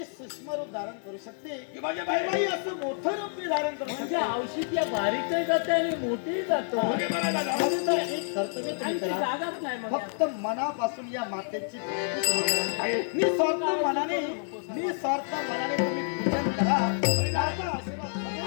सूक्ष्म रूप धारण करू शकते, की माझ्या बाई- केव्हाही असं मोठं रूप मी धारण करू म्हणजे शकते. औषध या बारीकही जाते आणि मोठी जातो म्हणजे मला दादा म्हणून तर एक कर्तव्य तुम्ही आणि ती करा. जागाच नाही मग फक्त मनापासून या मातेची भक्ती तुम्ही करा. निस्वार्थ मनाने तुम्ही पूजन करा. माझा आशीर्वाद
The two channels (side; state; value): right; silent; 59 dB below the other